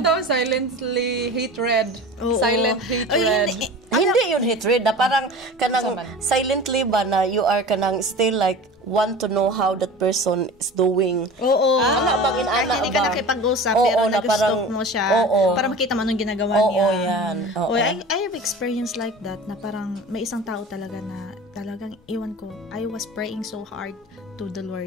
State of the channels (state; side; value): normal; both; correlation 0.36